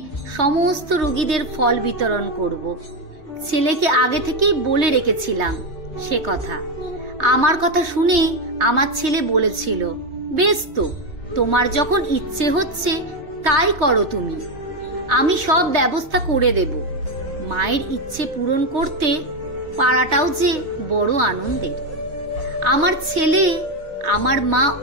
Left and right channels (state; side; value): late; left; 3.2 ms